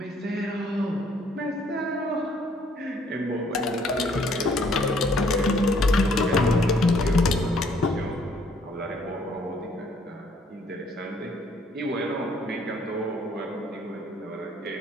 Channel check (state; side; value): normal; both; correlation 0.64